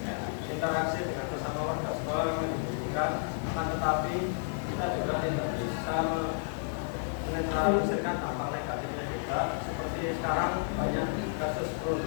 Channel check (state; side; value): silent; right; digital silence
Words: interaksi dengan sesama warga sekolah memang dibutuhkan, akan tetapi kita juga tidak bisa menetralisirkan dampak negatifnya juga. Seperti sekarang banyak kasus